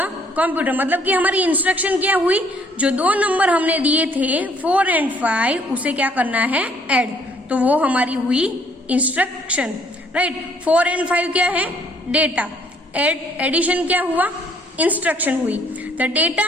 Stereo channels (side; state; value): both; normal; correlation 0.64